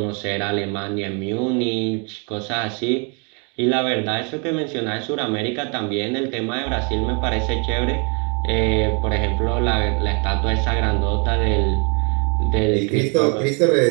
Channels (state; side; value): quieter; left; 33.3 dB